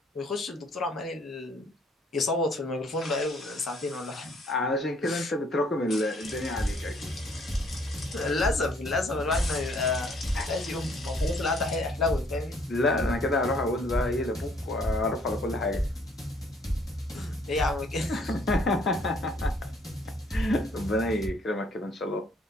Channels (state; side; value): normal; both; correlation 0.63